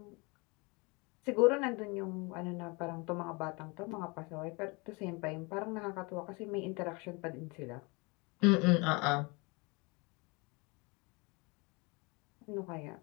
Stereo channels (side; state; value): right; quieter; 28.5 dB